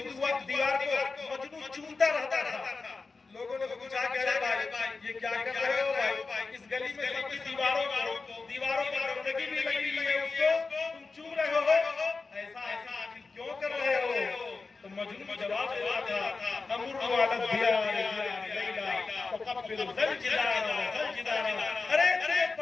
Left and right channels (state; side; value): quieter; right; 4.1 dB